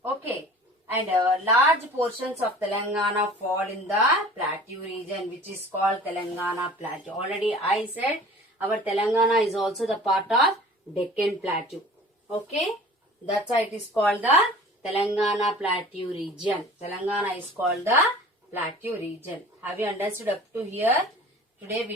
Okay. And large portions of Telangana fall in the Plateau region, which is called Telangana Plateau. Already I said our Telangana is also the part of Deccan Plateau. Okay. That's why it is called the Telangana Plateau region. Telangana is called the Plateau region. Have you understood up to here? Today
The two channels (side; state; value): both; normal; correlation 0.44